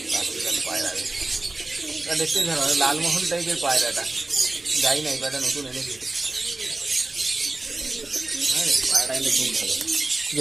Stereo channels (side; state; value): left; quieter; 3.0 dB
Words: পায়রা দেখতে ভালো, লালমোহন টাইপের পায়রাটা। যাই না, এই পায়রাটা নতুন এনেছি। হ্যাঁ, পায়রাটা কিন্তু খুব ভালো।